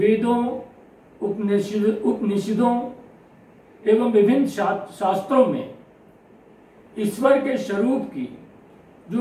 उपनिषदों एवं विभिन्न शास्त्रों में ईश्वर के स्वरूप की जो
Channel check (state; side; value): identical; both; correlation 1.00